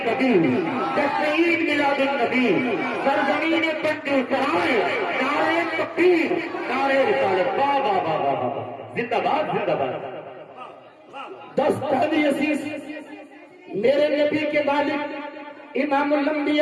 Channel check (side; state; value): both; identical; correlation 1.00